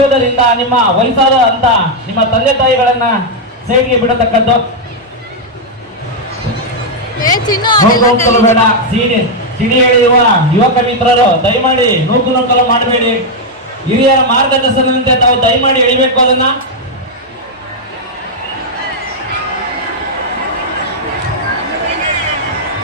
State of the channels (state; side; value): normal; both; correlation -0.01